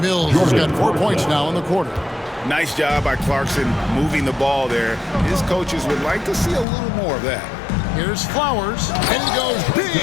Mills has got 4 points now in the quarter. Nice job by Clarkson moving the ball there. His coaches would like to see a little more of that. Here's Flowers, and he goes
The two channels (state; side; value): drops out; right; at 6.7 s